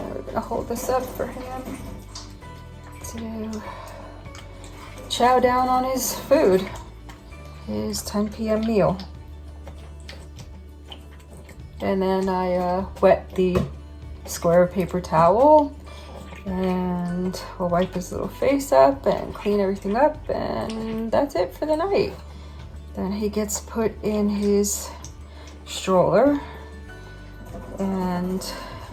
we're gonna hold this up for him to chow down on his food, his 10 p.m. meal. And then I wet the square paper towel, and we'll wipe his little face up and clean everything up, and that's it for the night. Then he gets put in his stroller, and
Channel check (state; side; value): identical; both; correlation 1.00